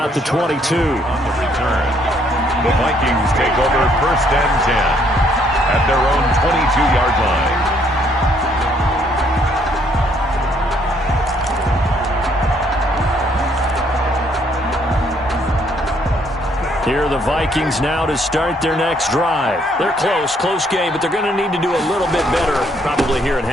the 22. On the return, the Vikings take over first and 10 at their own 22-yard line. Here are the Vikings now to start their next drive. They're close game, but they're going to need to do a little bit better probably here in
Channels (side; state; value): both; normal; correlation 0.68